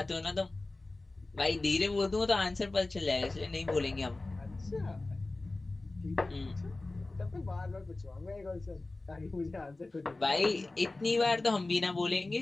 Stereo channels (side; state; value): right; quieter; 3.1 dB